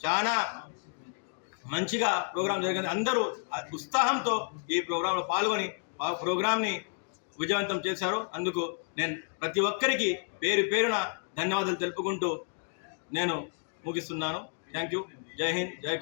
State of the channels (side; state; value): right; silent; 57 dB below the other